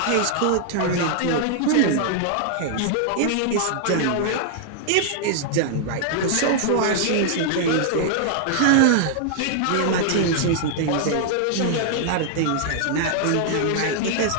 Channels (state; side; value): different; both; correlation -0.01